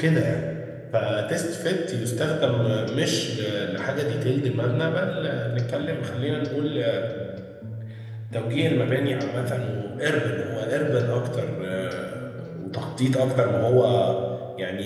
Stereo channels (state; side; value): identical; both; correlation 1.00